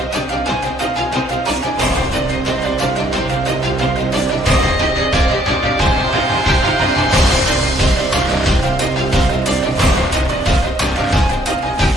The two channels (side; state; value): both; normal; correlation 0.67